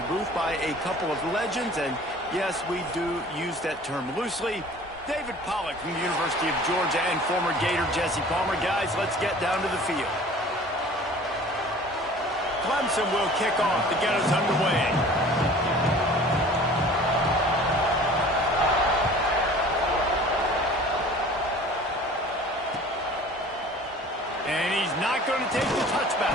booth by a couple of legends, and yes, we do use that term loosely. David Pollack from the University of Georgia and former Gator Jesse Palmer. Guys, let's get down to the field. Clemson will kick off to get us underway. And he's not going to take the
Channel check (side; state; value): both; normal; correlation 0.46